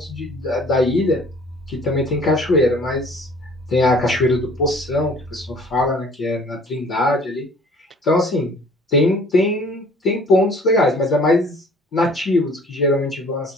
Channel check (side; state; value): both; normal; correlation 0.52